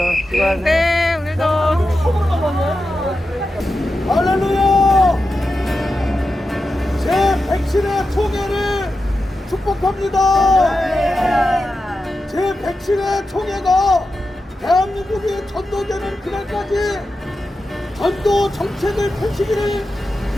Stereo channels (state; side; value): normal; both; correlation 0.91